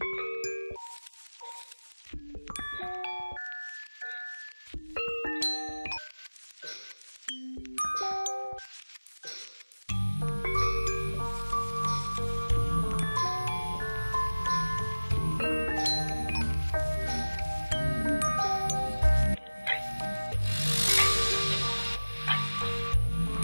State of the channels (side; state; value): both; inverted; correlation -1.00